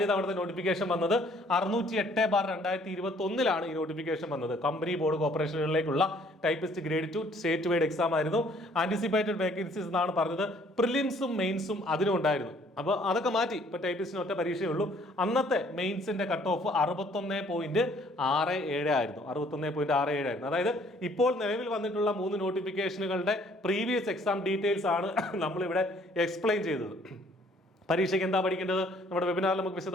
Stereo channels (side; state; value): both; normal; correlation 0.60